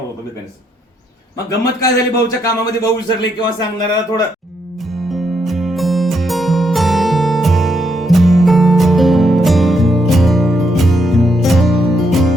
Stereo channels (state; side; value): normal; both; correlation 0.78